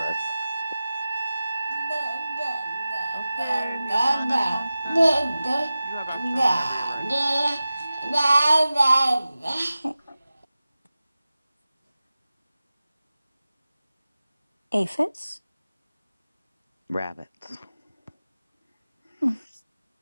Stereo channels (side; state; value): both; inverted; correlation -0.95